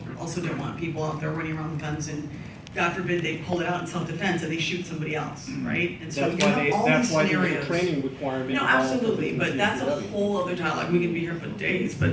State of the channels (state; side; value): identical; both; correlation 1.00